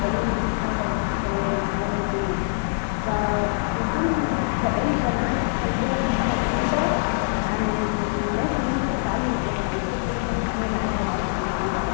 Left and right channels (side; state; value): right; silent; digital silence